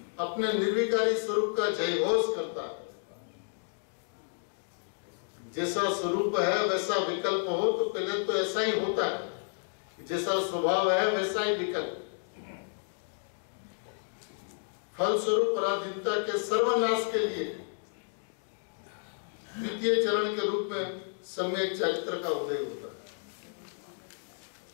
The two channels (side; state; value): right; silent; digital silence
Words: अपने निर्विकारी स्वरूप का जयघोष करता है। जैसा स्वरूप है वैसा विकल्प हो, तो पहले तो ऐसा ही होता है, जैसा स्वभाव है वैसा ही विकल्प। फलस्वरूप पराधीनता के सर्वनाश के लिए द्वितीय चरण के रूप में सम्यक चरित्र का उदय होता है।